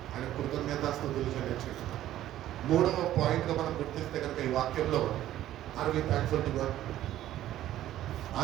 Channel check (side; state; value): left; quieter; 13.2 dB